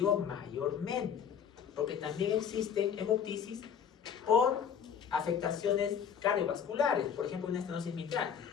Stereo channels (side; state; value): right; quieter; 7.7 dB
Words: mayormente, porque también existen hemoptisis por afectaciones cardiovasculares, por ejemplo una estenosis mitral.